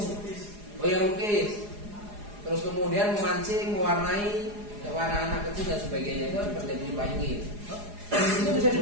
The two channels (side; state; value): left; late; 4.8 ms